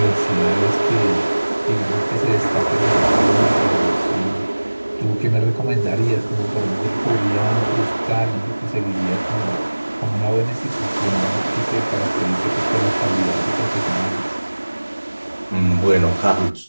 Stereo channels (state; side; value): inverted; both; correlation -1.00